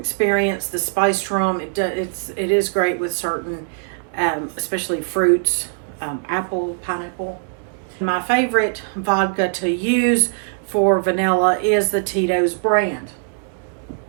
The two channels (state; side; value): silent; left; 65 dB below the other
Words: the spiced rum, it is great with certain, especially fruits, apple, pineapple. My favorite vodka to use for vanilla is the Tito's brand.